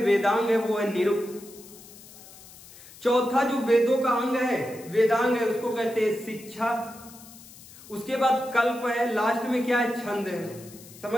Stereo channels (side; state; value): left; noise; hiss, 20 dB below the sound